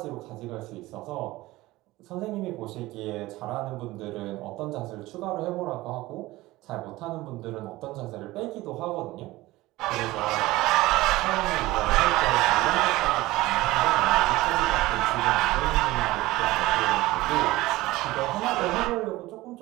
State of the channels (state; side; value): quieter; left; 18.6 dB